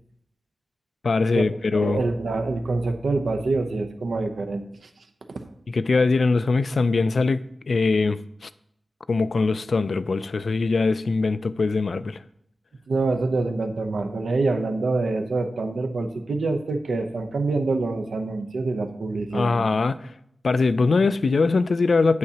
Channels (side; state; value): both; normal; correlation 0.92